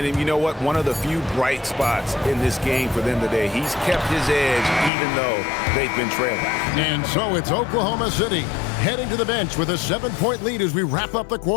you know what? One of the few bright spots in this game for them today. He's kept his edge even though they've been trailing. And so it's Oklahoma City heading to the bench with a 7-point lead as we wrap up the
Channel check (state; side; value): drops out; right; at 4.9 s